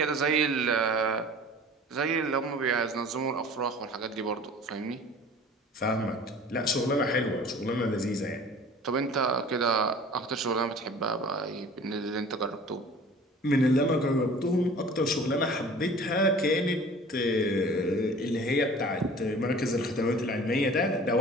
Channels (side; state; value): both; normal; correlation 0.45